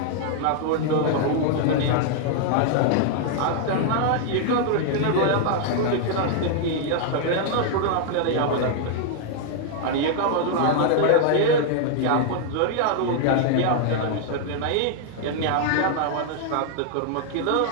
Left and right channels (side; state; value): both; different; correlation 0.00